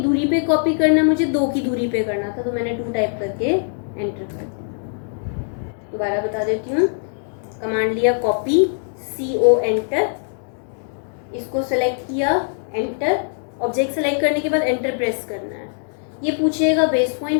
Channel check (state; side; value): silent; right; digital silence